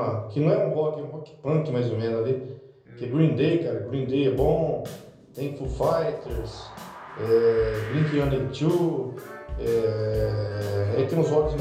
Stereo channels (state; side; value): identical; both; correlation 1.00